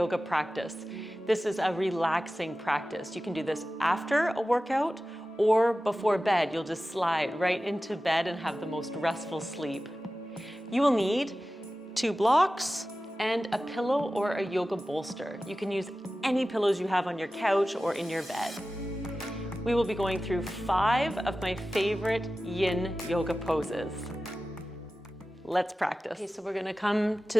practice. This is a relaxing practice. You can do this after a workout or before bed. You'll just slide right into bed and have the most restful sleep. You will need 2 blocks and a pillow or a yoga bolster. You can use any pillows you have on your couch or in your bed. We will be going through 5 of my favorite yin yoga poses. Let's practice. Okay, so we're gonna come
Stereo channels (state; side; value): normal; both; correlation 0.95